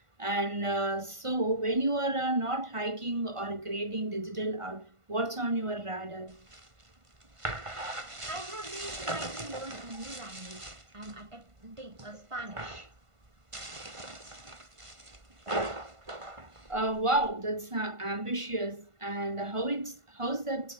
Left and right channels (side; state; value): left; late; 1.5 ms